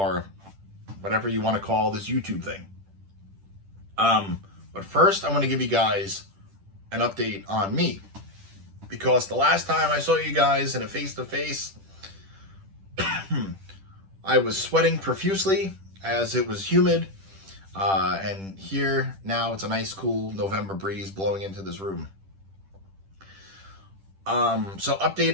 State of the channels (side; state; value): left; late; 10 ms